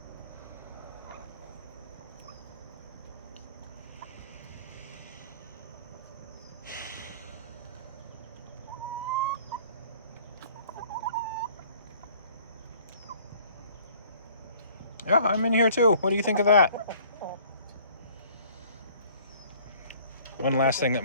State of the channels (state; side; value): inverted; both; correlation -0.54